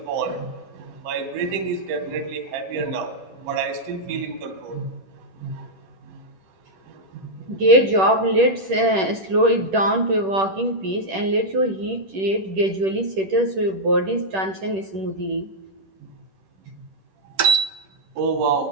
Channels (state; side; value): late; left; 10 ms